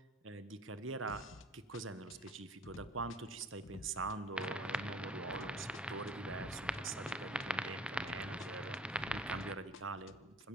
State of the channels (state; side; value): normal; both; correlation 0.47